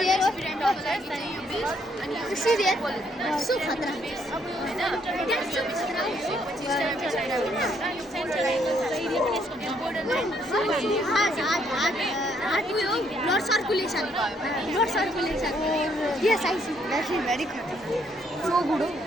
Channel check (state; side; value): normal; both; correlation 0.70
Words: See there. So khatra. Heart will blood circulation. Blood circulation. Yes, I see. That's very good. So good.